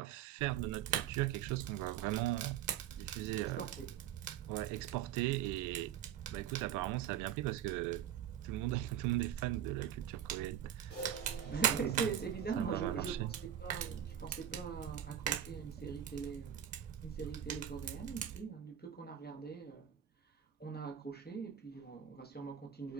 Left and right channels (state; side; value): quieter; left; 10.2 dB